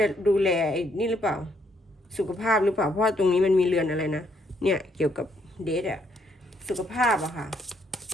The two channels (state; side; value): normal; both; correlation 0.72